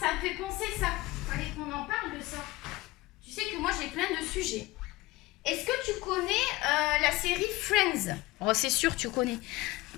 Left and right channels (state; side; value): quieter; right; 20.2 dB